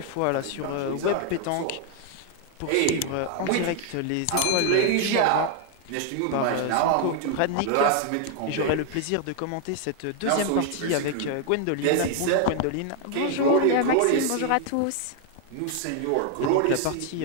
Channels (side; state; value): both; different; correlation 0.00